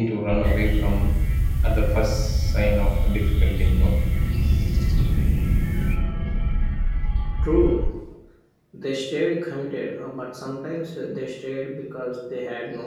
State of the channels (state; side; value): identical; both; correlation 1.00